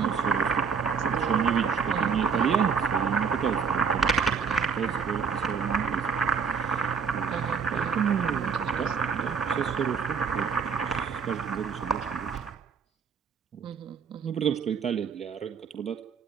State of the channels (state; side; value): quieter; left; 6.1 dB